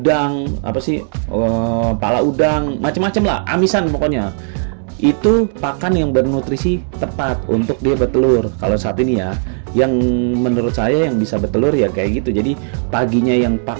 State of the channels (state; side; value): silent; left; digital silence